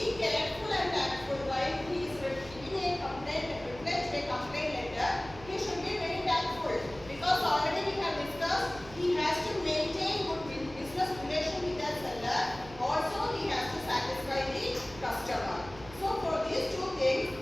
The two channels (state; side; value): noise; right; hum, 17 dB below the sound